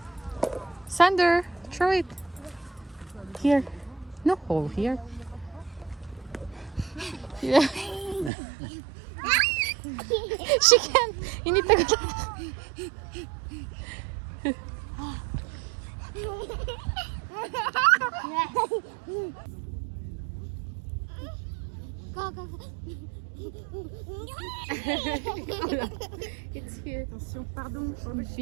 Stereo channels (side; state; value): left; drops out; at 8.3 s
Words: Sander, throw it. Here. No hole here. Yeah. She can't. Hindi tagal. Go, go, go. It's here. Attention, pardon.